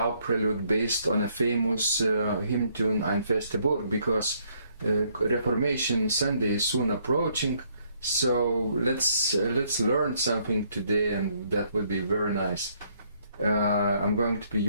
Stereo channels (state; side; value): inverted; both; correlation -0.69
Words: Prelude based on a famous hymn tune EIN FESTE BURG because Reformation Sunday is soon approaching. So let's learn something today, and that would be very nice. I'm going to be